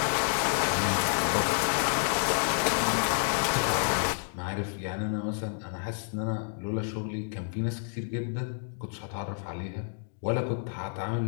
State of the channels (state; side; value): silent; right; 58 dB below the other